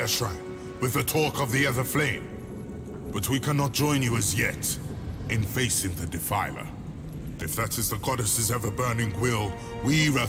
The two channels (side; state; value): both; identical; correlation 1.00